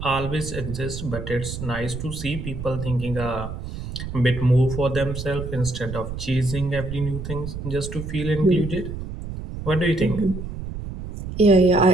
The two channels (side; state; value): right; noise; rumble, 8 dB below the sound